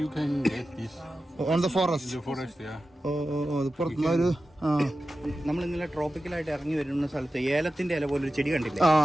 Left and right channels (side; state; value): both; normal; correlation 0.93